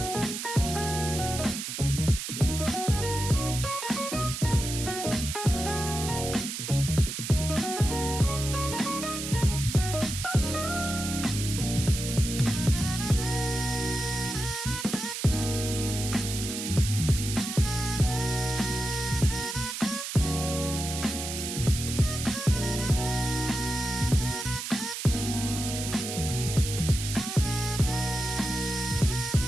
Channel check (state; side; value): noise; right; hiss, 5 dB below the sound